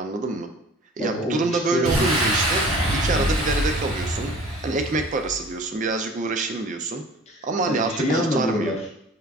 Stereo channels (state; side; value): normal; both; correlation 0.46